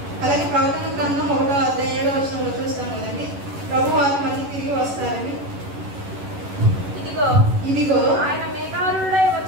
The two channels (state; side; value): late; left; 11 ms